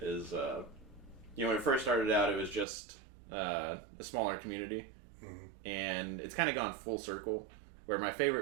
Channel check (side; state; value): left; drops out; at 2.7 s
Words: when it first started out, it was just a smaller community, and it's kind of gone full circle. Where my